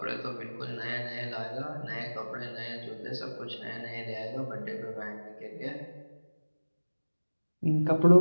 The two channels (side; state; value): both; inverted; correlation -1.00